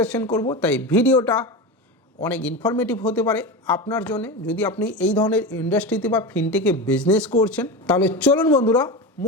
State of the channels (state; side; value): normal; both; correlation 0.22